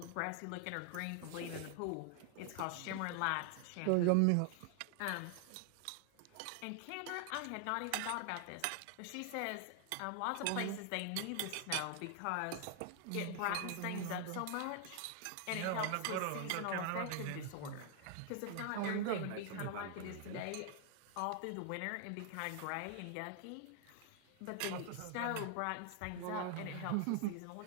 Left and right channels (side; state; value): both; different; correlation 0.00